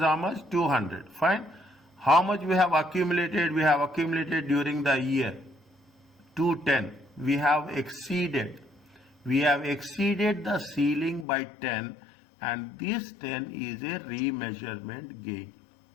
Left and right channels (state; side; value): drops out; right; at 11.2 s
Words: much? 200. Fine. How much we have accumulated? We have accumulated during the year 210. We have exceeded. We have exceeded the ceiling by 10, and this 10 is a remeasurement gain.